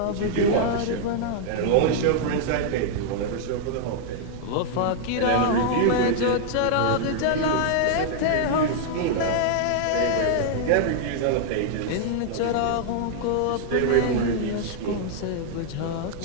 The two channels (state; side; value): different; both; correlation -0.01